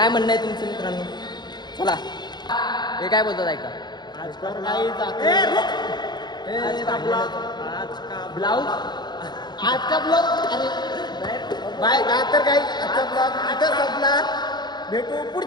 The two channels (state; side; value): late; right; 0.21 ms